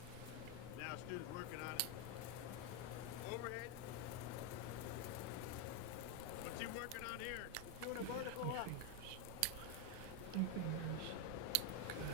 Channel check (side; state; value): both; different; correlation 0.02